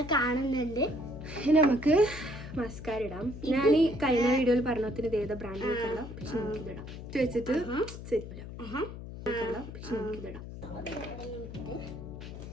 കാണുന്നുണ്ട്. നമുക്ക് മസ്കാര ഇടാം. ഞാൻ ഈ കഴിഞ്ഞ വീഡിയോയിൽ പറഞ്ഞതിന് ഇത് ഏതാ ബ്രാൻഡ് നോക്കല്ല, പക്ഷെ നമുക്കിതിടാം. വെച്ചിട്ട് സെറ്റ് ഇടാം, പക്ഷെ നമുക്കിതിടാം.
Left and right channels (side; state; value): left; noise; hum, 11 dB below the sound